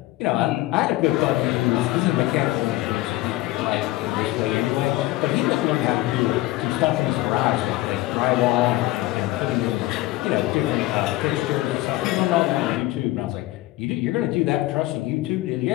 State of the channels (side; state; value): right; quieter; 17.6 dB